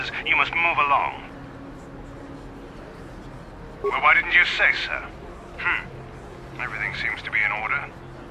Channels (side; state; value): both; identical; correlation 1.00